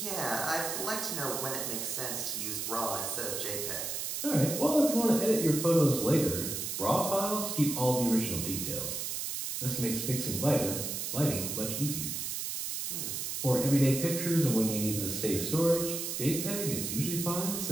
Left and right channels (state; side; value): noise; right; hiss, 3 dB below the sound